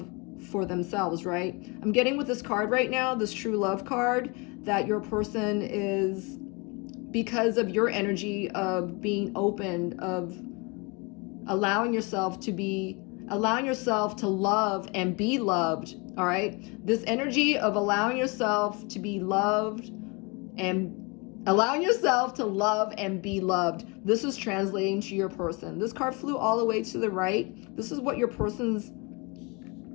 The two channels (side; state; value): right; quieter; 29.2 dB